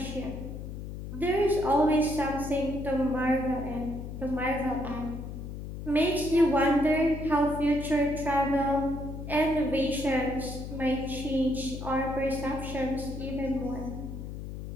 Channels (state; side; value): noise; left; hum, 8 dB below the sound